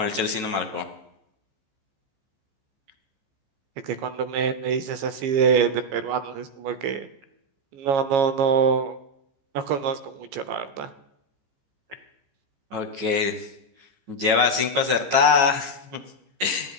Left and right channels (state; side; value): late; left; 15 ms